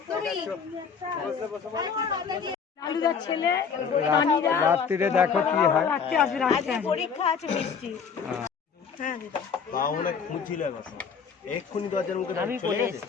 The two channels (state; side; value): quieter; right; 6.3 dB